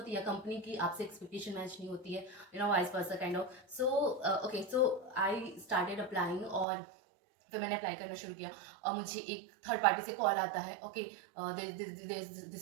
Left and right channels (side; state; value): left; drops out; at 6.7 s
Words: या कंपनी की आपसे एक्सपेक्टेशन मैच नहीं होती है, vice versa kind of. So okay, so I started applying, और फिर मैंने अप्लाई करना शुरू किया. और मुझे एक थर्ड पार्टी से कॉल आता है, okay this